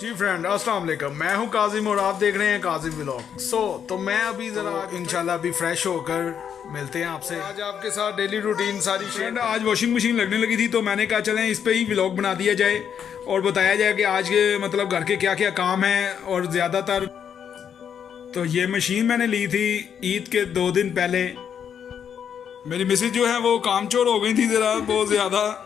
अस्सलाम वालेकुम, मैं हूं काजिम और आप देख रहे हैं काजिम व्लॉग। तो मैं अभी ज़रा इंशाल्लाह अभी फ्रेश होकर मिलते हैं आपसे। आज आपके साथ डेली रूटीन सारी फ्रेंड। आज वॉशिंग मशीन लगने लगी थी तो मैंने कहा चलें इस पे ही व्लॉग बना दिया जाए और बताया जाए कि आज के मतलब घर के क्या क्या काम हैं। और ज़्यादातर तो ये मशीन मैंने ली थी ईद के 2 दिन पहले। मेरी मिसेज जो है वो कामचोर हो गई थी ज़रा बहुत ज़्यादा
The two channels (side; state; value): right; quieter; 8.1 dB